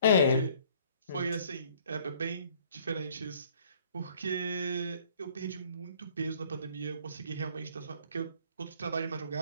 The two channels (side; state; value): both; inverted; correlation -0.58